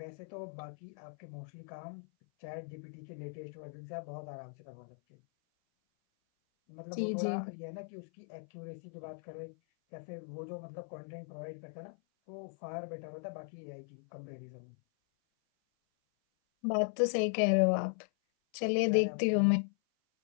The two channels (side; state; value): right; silent; 53 dB below the other